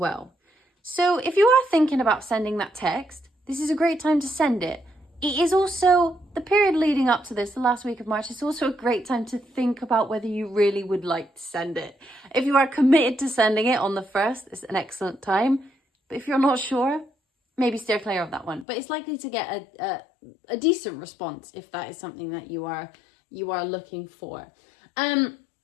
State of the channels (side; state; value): right; drops out; at 18.7 s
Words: So if you are thinking about sending that text, this is a great time to send it. It is also the period leading up to this, the last week of March. It's also a great time to think about whether you really would like to send it. If you are committed to sending it on the 1st, it's an excellent time. But if you're not sure, maybe steer clear of that one. But it's likely to get a decent response if that is something that you are looking for.